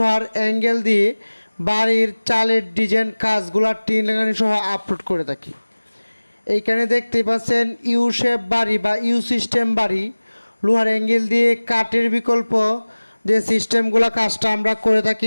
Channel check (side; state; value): both; inverted; correlation -1.00